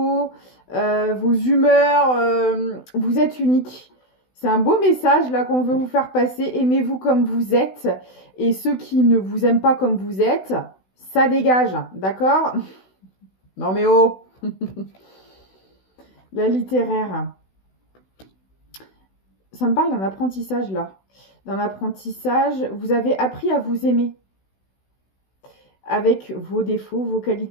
vos humeurs, vous êtes unique. C'est un beau message là qu'on veut vous faire passer. Aimez-vous comme vous êtes. Et ceux qui ne vous aiment pas comme vous êtes, ça dégage, d'accord? Non mais oh. La littéraire. Ça me parle d'un apprentissage là. D'un apprentissage, vous avez appris à vous aimer. Avec vos défauts, vos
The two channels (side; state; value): right; late; 16 ms